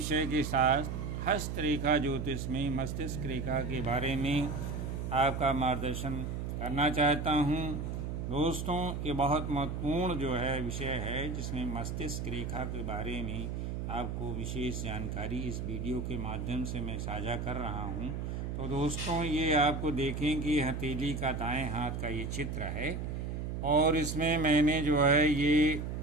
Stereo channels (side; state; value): right; noise; hum, 4 dB below the sound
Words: के साथ हस्तरेखा ज्योतिष में मस्तिष्क रेखा के बारे में आपका मार्गदर्शन करना चाहता हूं। दोस्तों, ये बहुत महत्वपूर्ण जो है विषय है जिसमें मस्तिष्क रेखा के बारे में आपको विशेष जानकारी इस वीडियो के माध्यम से मैं साझा कर रहा हूं। तो दोस्तों, ये आपको देखें कि हथेली का दाएं हाथ का ये चित्र है और इसमें मैंने जो है ये